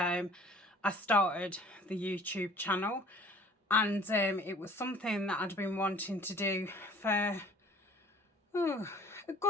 started the YouTube channel. And it was something that I'd been wanting to do for a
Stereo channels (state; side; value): normal; both; correlation 0.51